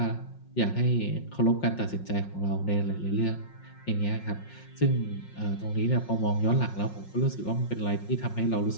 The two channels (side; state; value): right; late; 5.5 ms